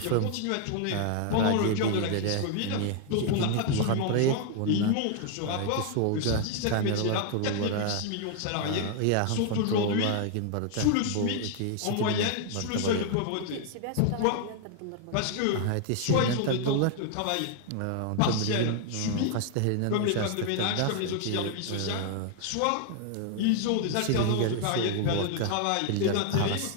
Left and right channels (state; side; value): different; both; correlation 0.00